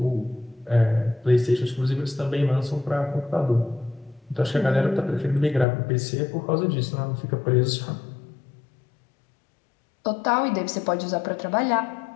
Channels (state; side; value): drops out; right; at 5.7 s